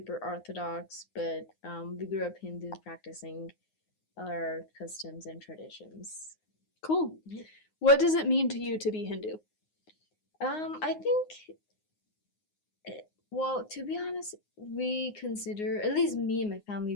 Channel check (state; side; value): late; right; 9.6 ms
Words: orthodox, but we grew up Hindu, practicing our customs and traditions. Cool. Yeah. What does it mean to you to be Hindu? I think, well, to be honest, we consider, at least me and my family,